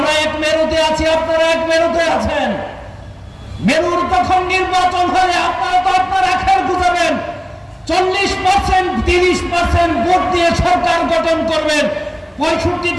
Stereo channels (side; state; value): both; identical; correlation 1.00